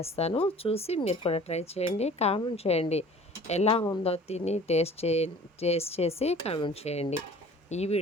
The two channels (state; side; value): normal; both; correlation 0.47